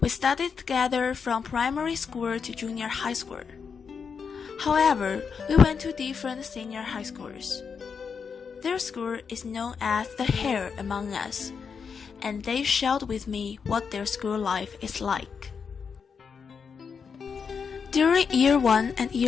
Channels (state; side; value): quieter; right; 6.1 dB